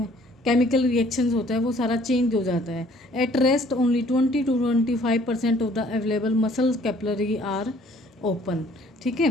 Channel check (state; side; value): normal; both; correlation 0.58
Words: केमिकल रिएक्शंस होता है वो सारा चेंज हो जाता है। At rest only 20 to 25% of the available muscle capillary are open. ठीक